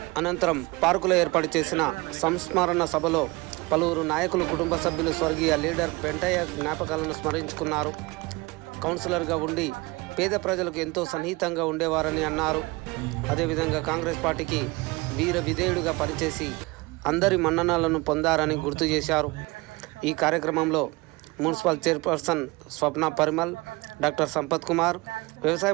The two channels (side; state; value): left; quieter; 23.8 dB